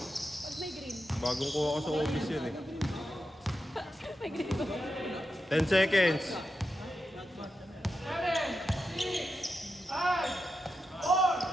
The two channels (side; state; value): both; normal; correlation 0.88